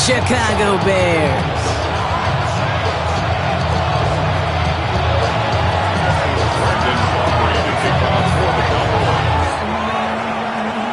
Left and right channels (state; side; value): identical; both; correlation 1.00